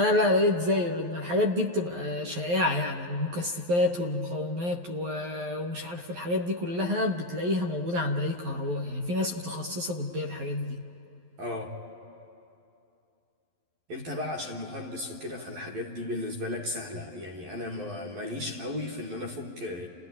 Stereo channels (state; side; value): late; left; 11 ms